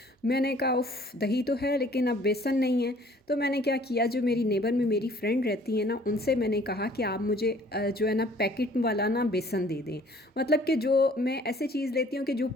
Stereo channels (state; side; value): normal; both; correlation 0.55